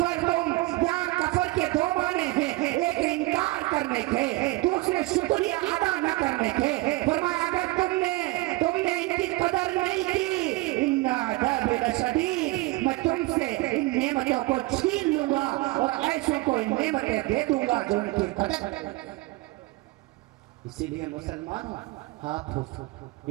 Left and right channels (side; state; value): left; quieter; 21.1 dB